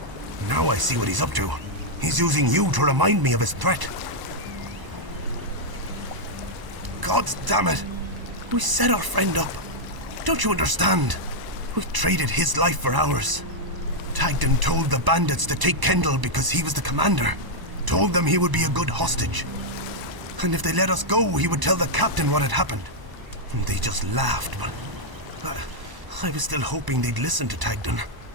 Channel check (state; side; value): late; left; 1.0 ms